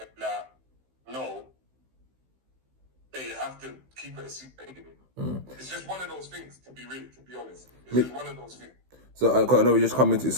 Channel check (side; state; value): left; late; 15 ms